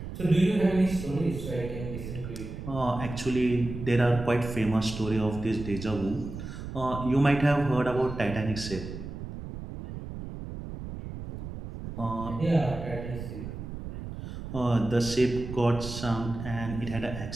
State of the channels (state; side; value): noise; right; rumble, 9 dB below the sound